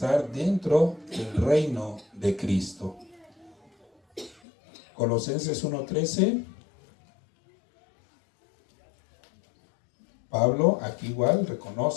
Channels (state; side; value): drops out; right; at 4.4 s